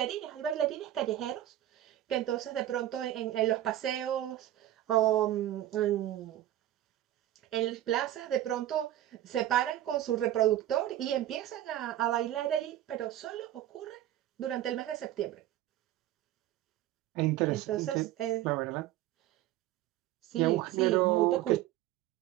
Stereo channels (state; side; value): quieter; left; 13.2 dB